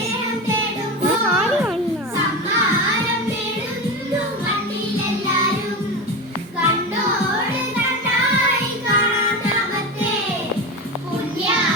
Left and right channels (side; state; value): both; normal; correlation 0.22